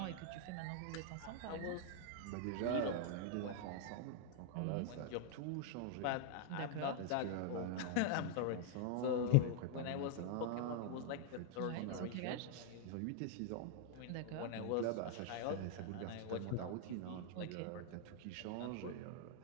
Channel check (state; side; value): different; both; correlation 0.00